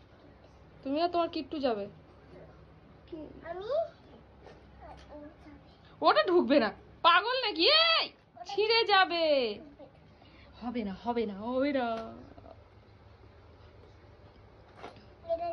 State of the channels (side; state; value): both; identical; correlation 1.00